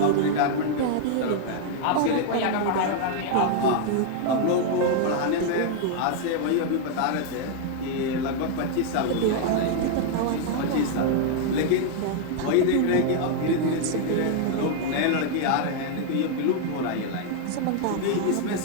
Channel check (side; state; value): both; different; correlation 0.00